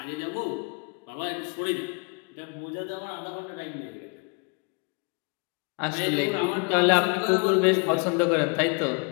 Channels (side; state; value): right; quieter; 34.2 dB